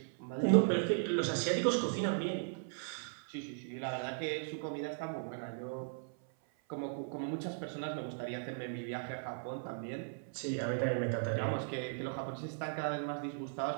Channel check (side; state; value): left; silent; 53 dB below the other